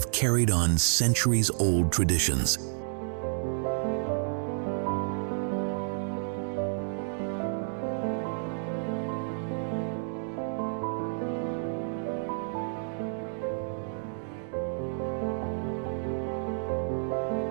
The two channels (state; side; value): silent; left; digital silence